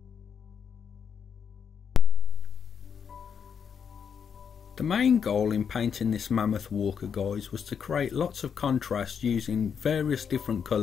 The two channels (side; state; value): right; quieter; 7.1 dB